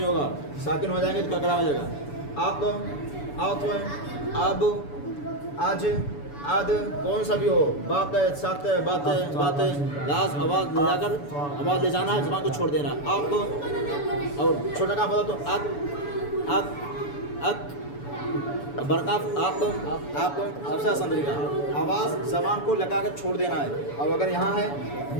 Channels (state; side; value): late; right; 7.0 ms